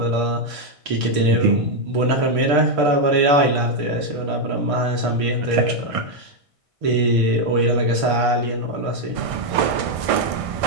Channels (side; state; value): left; late; 1.6 ms